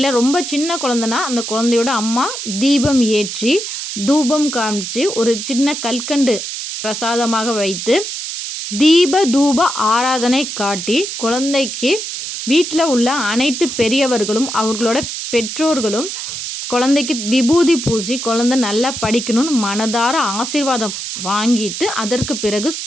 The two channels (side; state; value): right; noise; hiss, 6 dB below the sound